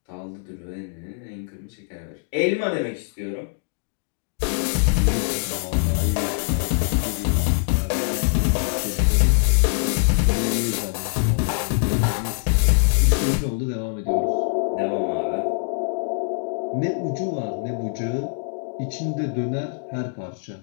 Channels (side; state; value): right; silent; digital silence